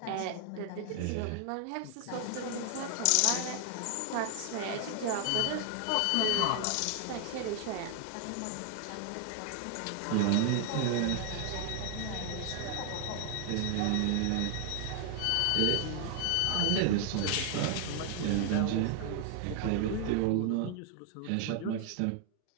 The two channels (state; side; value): different; both; correlation 0.00